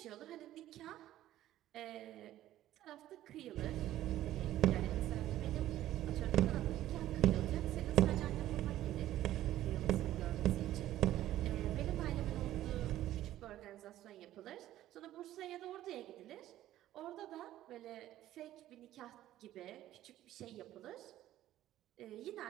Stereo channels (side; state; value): left; quieter; 13.6 dB